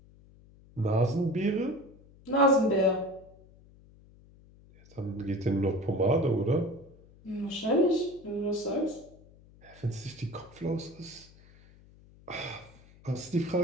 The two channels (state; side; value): noise; left; hum, 25 dB below the sound